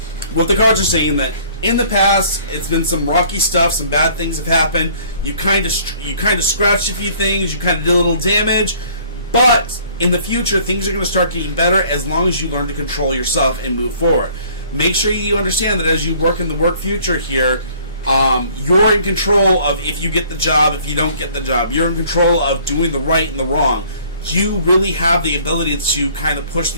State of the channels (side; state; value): both; inverted; correlation -0.56